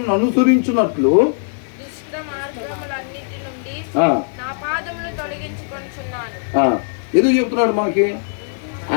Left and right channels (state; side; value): silent; right; 66 dB below the other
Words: అనుసరించినట్లు ఎందుకు చెప్తున్నాడు మనకి?